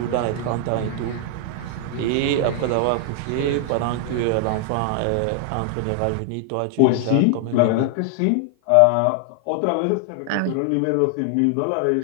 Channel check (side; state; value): both; different; correlation 0.00